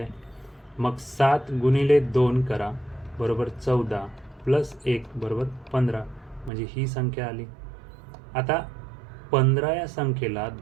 मग 7 गुणिले 2 करा बरोबर 14, प्लस 1 बरोबर 15, म्हणजे ही संख्या आली. आता 15 या संख्येला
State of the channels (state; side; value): drops out; left; at 6.5 s